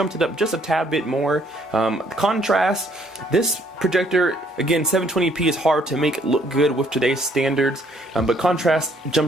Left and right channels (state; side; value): normal; both; correlation 0.65